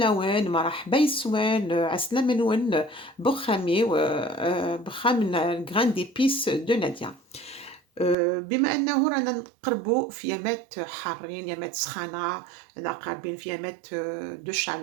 مرحبا يسوان عسلامة نون بخامي بخام الجران ديبيس دو نادية. بما أنه رانا نقربوا في يامات حارين يامات سخانة رانا قاربين في يامات دو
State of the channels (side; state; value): left; drops out; at 8.2 s